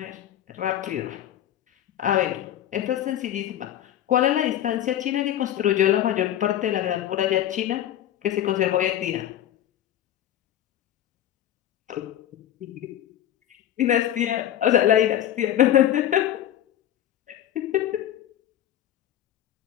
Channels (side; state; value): right; quieter; 11.6 dB